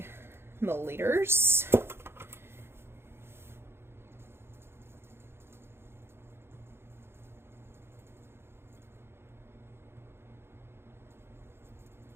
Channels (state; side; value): late; left; 0.11 ms